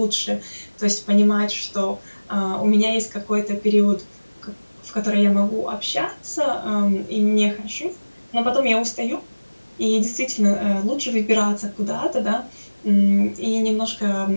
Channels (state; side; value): inverted; both; correlation -1.00